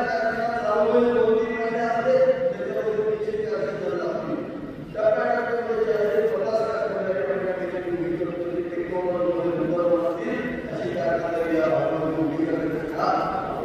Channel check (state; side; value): identical; both; correlation 1.00